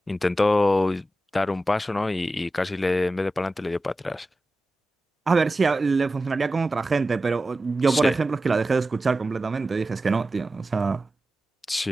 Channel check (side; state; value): both; normal; correlation 0.94